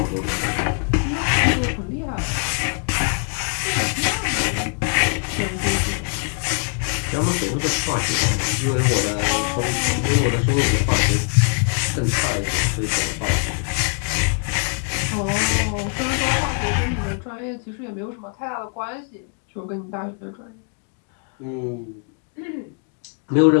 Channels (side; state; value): right; quieter; 33.7 dB